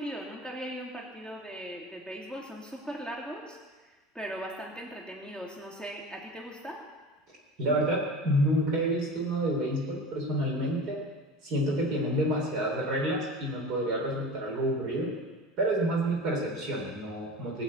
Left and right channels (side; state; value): both; normal; correlation 0.34